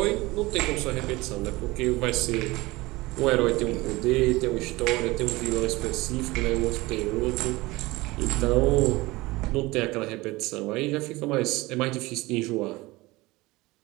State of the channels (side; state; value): left; quieter; 21.0 dB